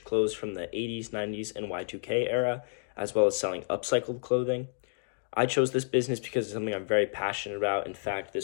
clothes from the 80s, 90s, and Y2K era, as well as selling upcycled clothing. I chose this business because it's something I'm very passionate about. In fact,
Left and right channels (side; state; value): right; silent; digital silence